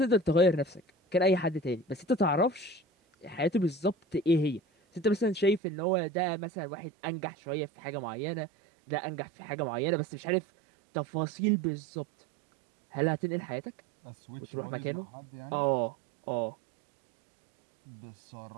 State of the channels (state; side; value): drops out; left; at 5.6 s